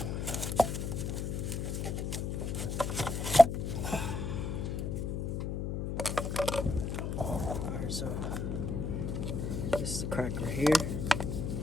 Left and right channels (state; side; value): noise; left; hum, 2 dB below the sound